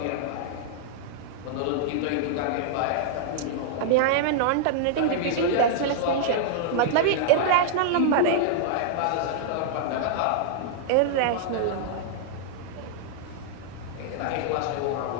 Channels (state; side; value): different; both; correlation -0.01